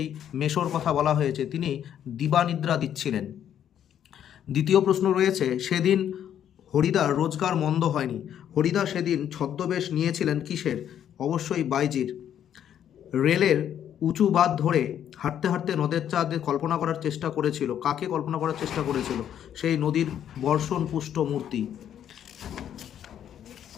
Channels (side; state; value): right; quieter; 9.9 dB